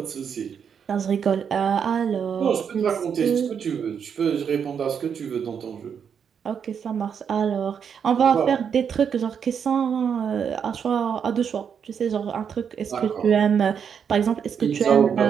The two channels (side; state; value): left; quieter; 7.3 dB